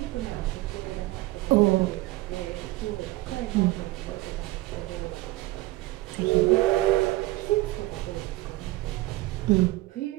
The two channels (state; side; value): quieter; left; 18.8 dB